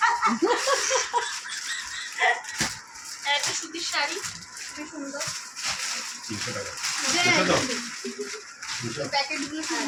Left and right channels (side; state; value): both; identical; correlation 1.00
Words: একটা সুতির শাড়ি খুবই সুন্দর। 300 টাকা। দেখো তো? 300 প্যাকেটগুলো